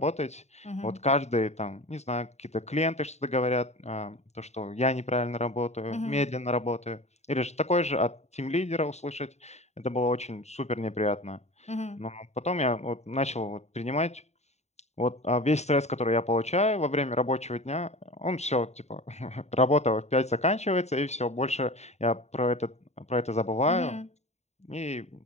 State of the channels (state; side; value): late; right; 0.32 ms